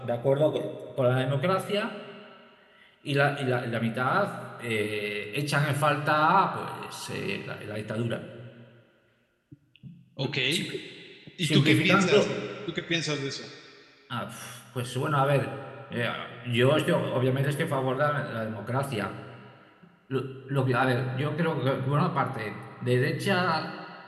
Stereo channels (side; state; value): both; identical; correlation 1.00